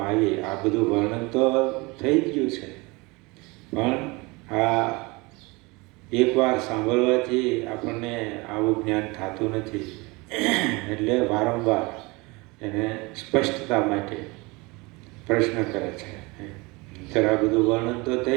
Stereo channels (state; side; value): quieter; left; 25.1 dB